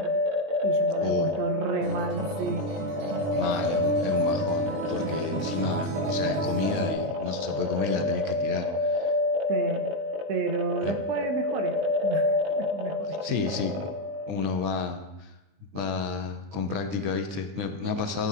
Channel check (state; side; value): late; left; 20 ms